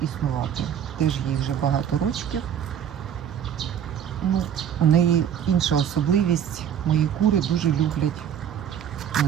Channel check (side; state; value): left; quieter; 9.2 dB